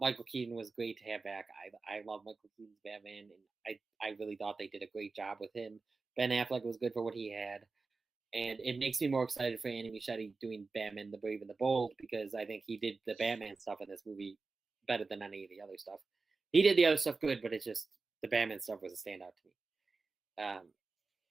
Keaton was great to have back. I love Michael Keaton's Batman, and I really thought they did a great job with him. Ben Affleck was good for what he had. And it makes me more excited for Andy Muschietti doing Batman the Brave and the Bold, because I think he did the Batman stuff in this movie better than any of the other stuff. He did the other stuff good, but it's just the Batman stuff was a standout to me.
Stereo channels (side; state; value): left; quieter; 4.1 dB